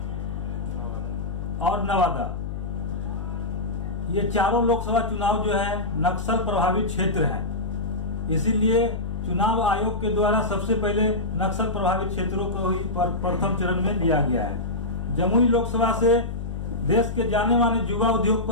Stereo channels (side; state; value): left; noise; hum, 6 dB below the sound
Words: और नवादा। ये चारों लोकसभा चुनाव जो है नक्सल प्रभावित क्षेत्र हैं। इसीलिए चुनाव आयोग के द्वारा सबसे पहले नक्सल प्रभावित क्षेत्रों को ही प्रथम चरण में लिया गया है। जमुई लोकसभा से देश के जाने माने युवा